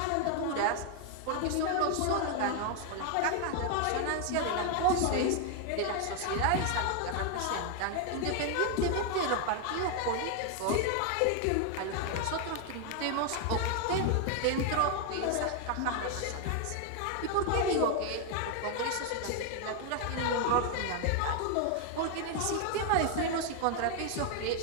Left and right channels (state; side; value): different; both; correlation 0.01